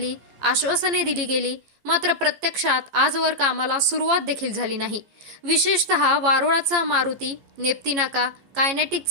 आश्वासने दिली गेली, मात्र प्रत्यक्षात आजवर कामाला सुरुवात देखील झाली नाही. विशेषतः वारोळाचा मारुती, नेप्ती नाका, कायनेटिक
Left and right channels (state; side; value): late; left; 15 ms